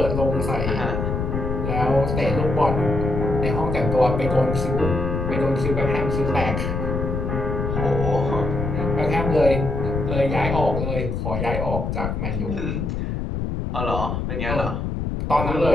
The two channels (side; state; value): left; noise; rumble, 2 dB below the sound